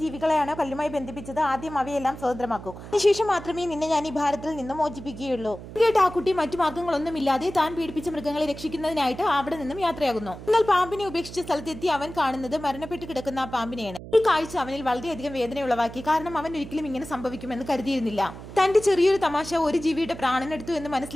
ജീവികളെയാണോ കല്ലുമായി ബന്ധിപ്പിച്ചത് ആദ്യം അവയെല്ലാം സ്വതന്ത്രമാക്കൂ. അതിനുശേഷം മാത്രമേ നിന്നെ ഞാൻ ഈ ഭാരത്തിൽ നിന്നും മോചിപ്പിക്കുകയുള്ളൂ. കേട്ട് ആ കുട്ടി മറ്റു മാർഗങ്ങളൊന്നുമില്ലാതെ താൻ പീഡിപ്പിച്ച മൃഗങ്ങളെ രക്ഷിക്കുന്നതിനായിട്ട് അവിടെ നിന്നും യാത്രയാകുന്നു. എന്നാൽ പാമ്പിനെ ഉപേക്ഷിച്ച സ്ഥലത്തെത്തി അവൻ കാണുന്നത് മരണപ്പെട്ട് കിടക്കുന്ന ആ പാമ്പിനെയാണ്. ഈ കാഴ്ച അവനിൽ വളരെയധികം വേദന ഉളവാക്കി. കാരണം അവൻ ഒരിക്കലും ഇങ്ങനെ സംഭവിക്കുമെന്ന് കരുതിയിരുന്നില്ല. തന്റെ ചെറിയൊരു തമാശ ഒരു ജീവിയുടെ പ്രാണനെടുത്തു എന്ന്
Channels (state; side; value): noise; right; hum, 13 dB below the sound